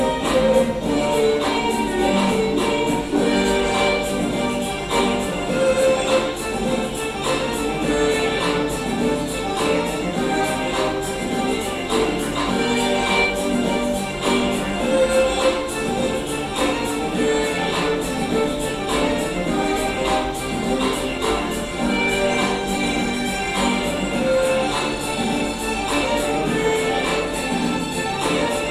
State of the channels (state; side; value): identical; both; correlation 1.00